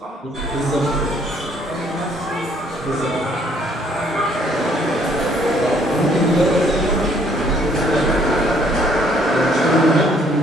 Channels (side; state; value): both; normal; correlation 0.64